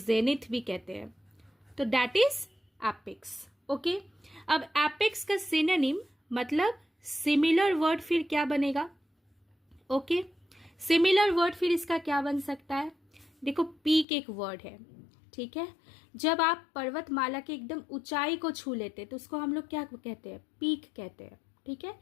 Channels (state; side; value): drops out; right; at 14.1 s